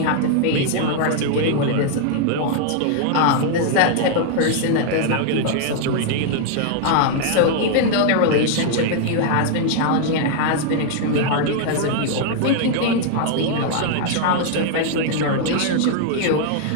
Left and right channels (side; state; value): both; different; correlation 0.00